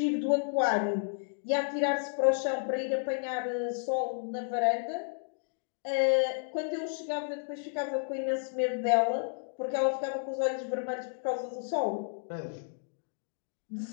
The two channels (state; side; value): silent; right; digital silence